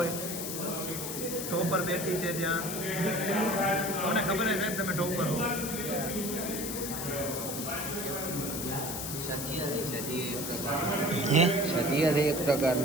ટોપર બેઠી છે ત્યાં મને ખબર છે સાહેબ તમે ટોપર હો સદીય છે એક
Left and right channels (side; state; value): left; noise; hiss, 5 dB below the sound